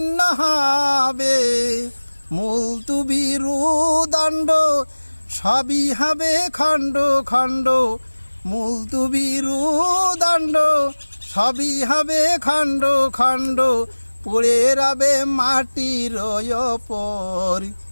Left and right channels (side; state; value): both; inverted; correlation -1.00